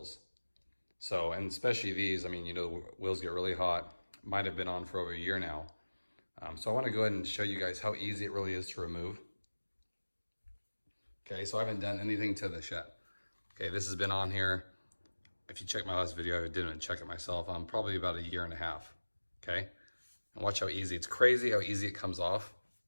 So, and especially these, the wheels get really hot. Might have been on for over a year now. So I wanna go ahead and show you guys how easy it really is to remove. Okay, so I haven't done anything to this yet. Okay, this has been on here. If you check my last video, I didn't check it myself. I'm probably about a year and a half. Okay, and watch how easy. It's crazy how easy it comes off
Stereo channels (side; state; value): both; inverted; correlation -1.00